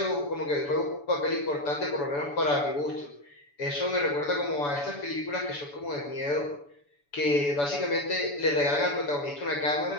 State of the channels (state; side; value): late; right; 7.0 ms